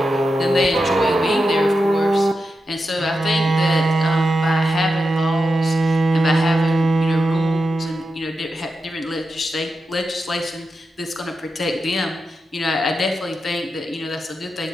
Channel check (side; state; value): both; normal; correlation 0.89